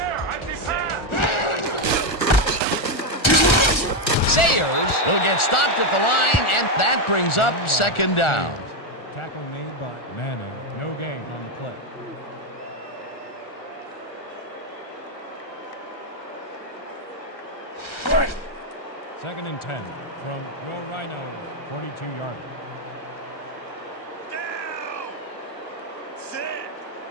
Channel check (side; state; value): right; late; 1.4 ms